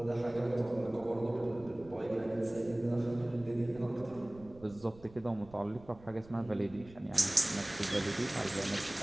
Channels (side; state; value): right; noise; rumble, 21 dB below the sound